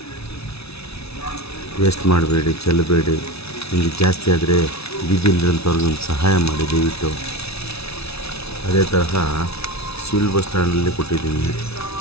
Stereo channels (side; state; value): right; late; 0.79 ms